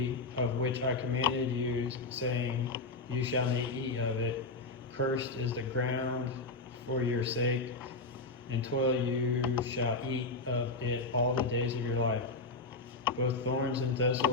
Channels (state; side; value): quieter; right; 3.6 dB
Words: of which I commanded you, saying, You shall not eat of it. Cursed is the ground for your sake, and toil you shall eat of it all the days of your life. Both thorns and